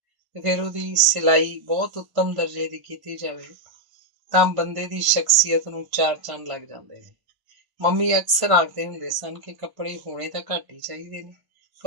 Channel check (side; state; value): left; late; 1.0 ms